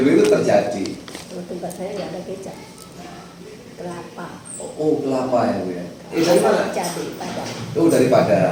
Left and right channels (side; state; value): both; identical; correlation 1.00